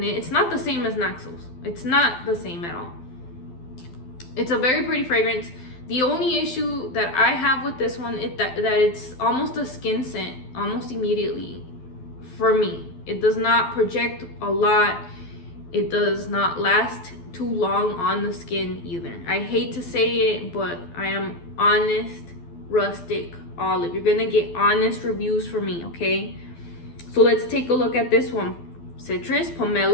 it. It's not the same as Neuxos. It's not the same at all. It's a very pretty fragrance. The only issue that I have with this one is that it's almost a skin scent almost immediately for me. It does not project a lot. It does not last too long on the skin either. I hate to say it, but I am honest, rustic olive. You're gonna get honest reviews from me, okay? So let's take a look at this one. Citrus,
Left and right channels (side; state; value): right; late; 12 ms